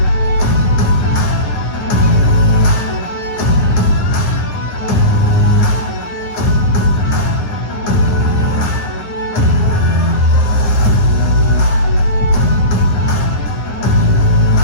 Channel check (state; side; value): late; right; 9.7 ms